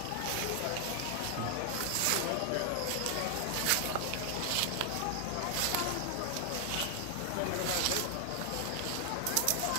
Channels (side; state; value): both; different; correlation 0.00